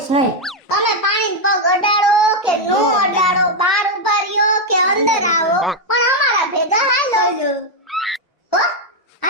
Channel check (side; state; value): both; normal; correlation 0.02